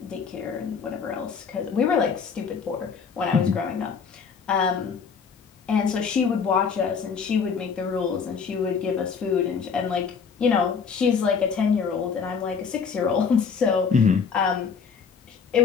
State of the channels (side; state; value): right; quieter; 6.1 dB